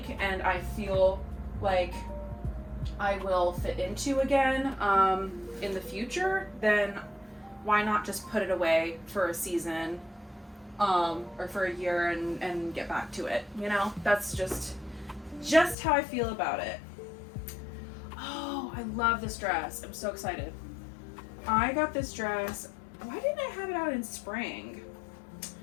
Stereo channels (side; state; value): right; drops out; at 15.8 s